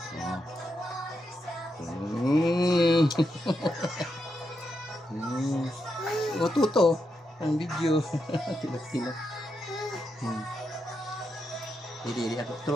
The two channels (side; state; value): both; normal; correlation 0.84